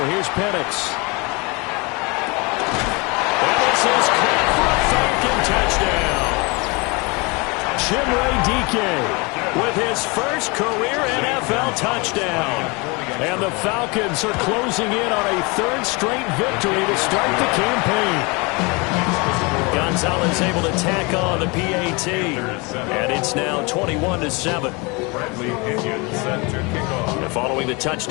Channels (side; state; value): right; quieter; 28.1 dB